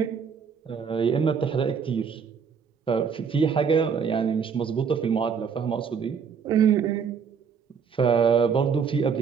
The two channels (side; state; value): left; quieter; 6.5 dB